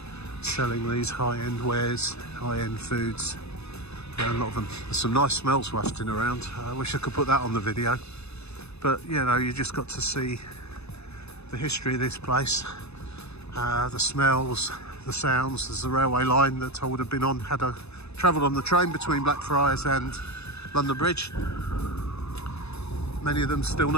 selling these high-end wares, high-end foods. A lot of them. There's some nice smells wafting around. I wish I could put that on the video, but you know, you just got to see the history of this place, the smells, the sounds. There's a railway line that I would have been on had I travelled on the train between Blackfriars and London Bridge. Many of them still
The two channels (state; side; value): late; right; 0.80 ms